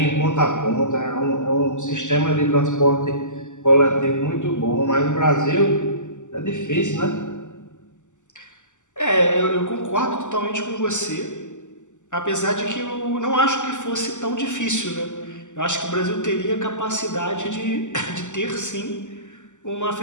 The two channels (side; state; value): right; late; 0.85 ms